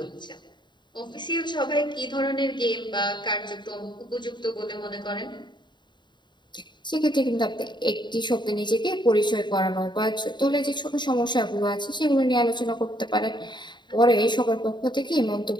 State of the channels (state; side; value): late; right; 0.22 ms